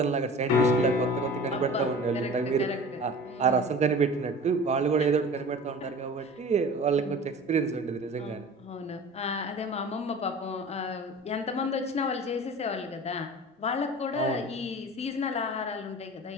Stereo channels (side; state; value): both; normal; correlation 0.39